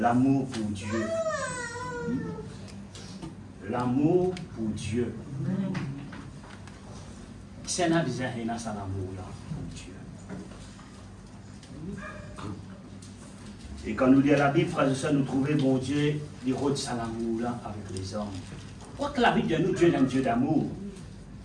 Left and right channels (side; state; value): both; identical; correlation 1.00